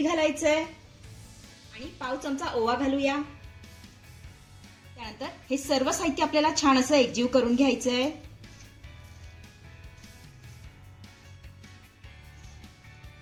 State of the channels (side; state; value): both; identical; correlation 1.00